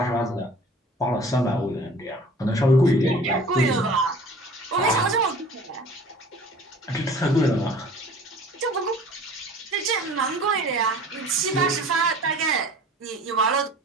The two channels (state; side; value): normal; both; correlation 0.45